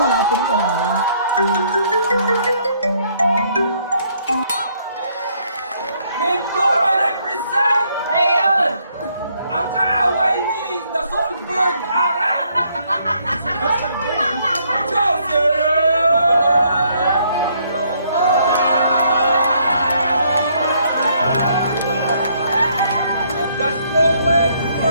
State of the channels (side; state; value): both; inverted; correlation -0.69